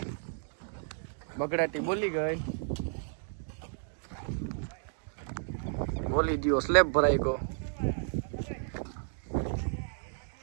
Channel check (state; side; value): silent; left; digital silence